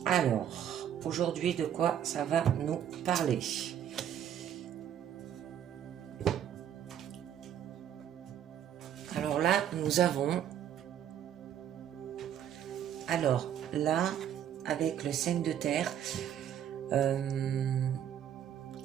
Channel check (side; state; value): left; quieter; 9.9 dB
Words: Alors, aujourd'hui, de quoi ça va nous parler ? Alors là, nous avons... Alors là, avec le 5 de terre,